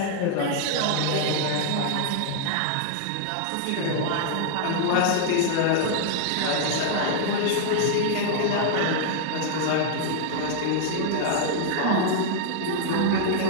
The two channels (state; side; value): different; both; correlation -0.01